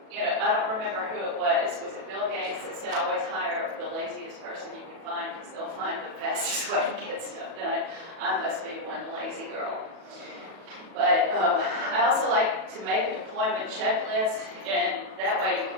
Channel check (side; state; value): left; late; 37 ms